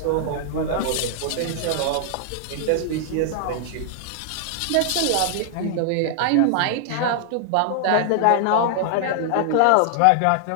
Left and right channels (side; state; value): both; different; correlation 0.00